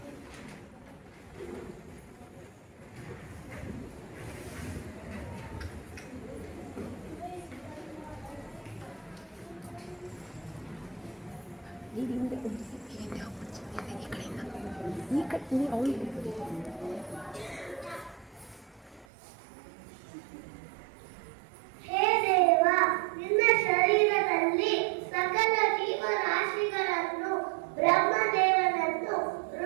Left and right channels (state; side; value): drops out; left; at 19.1 s